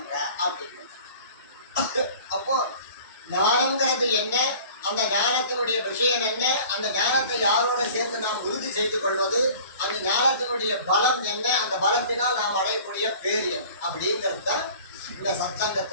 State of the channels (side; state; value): both; inverted; correlation -0.45